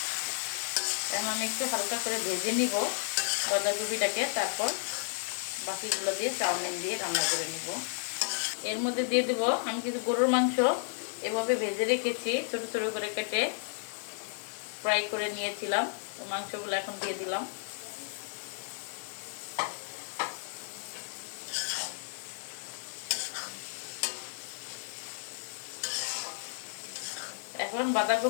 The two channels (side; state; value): right; silent; 56 dB below the other